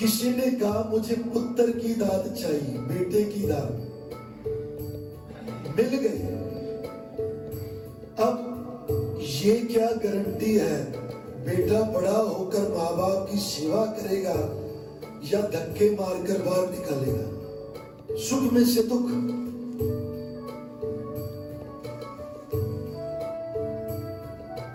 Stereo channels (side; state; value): both; identical; correlation 1.00